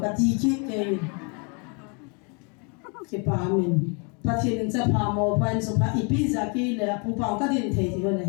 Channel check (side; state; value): right; quieter; 35.2 dB